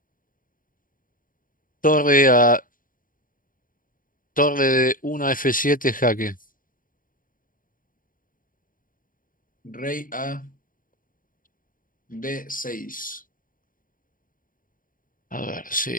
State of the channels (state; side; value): late; right; 0.40 ms